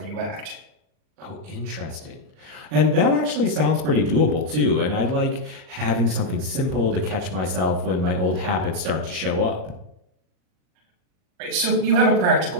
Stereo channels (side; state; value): left; late; 38 ms